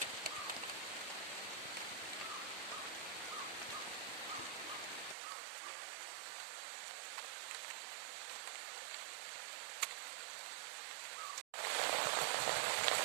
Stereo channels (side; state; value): left; drops out; at 5.2 s